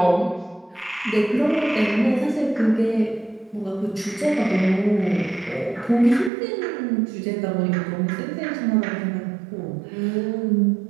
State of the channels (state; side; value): drops out; left; at 6.3 s